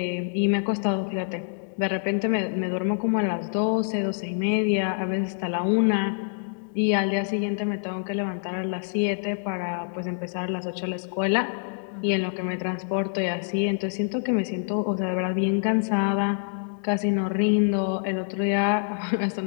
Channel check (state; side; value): silent; right; digital silence